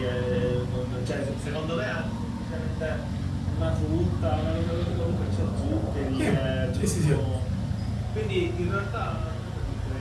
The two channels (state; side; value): identical; both; correlation 1.00